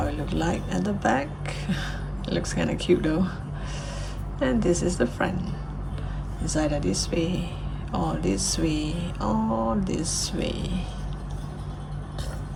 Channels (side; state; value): both; identical; correlation 1.00